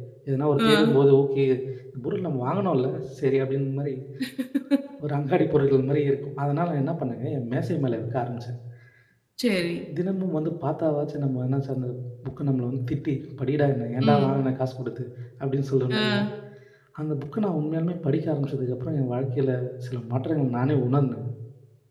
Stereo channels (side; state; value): both; identical; correlation 1.00